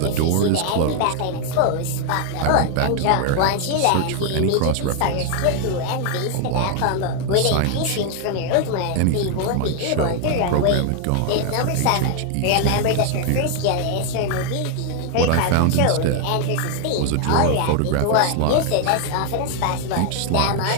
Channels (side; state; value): both; different; correlation 0.00